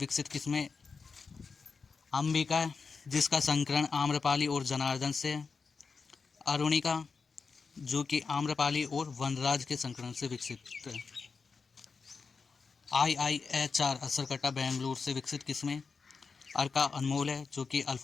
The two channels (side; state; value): right; quieter; 4.9 dB